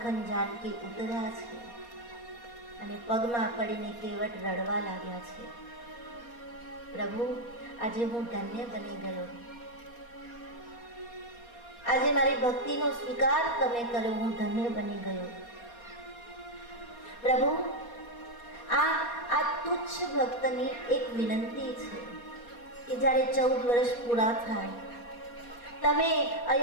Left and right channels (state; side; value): late; right; 4.2 ms